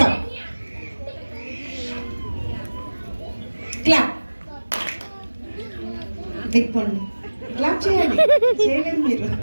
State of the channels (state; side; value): inverted; both; correlation -1.00